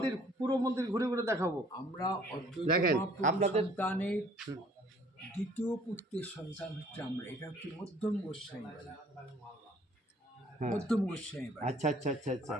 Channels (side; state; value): both; normal; correlation 0.57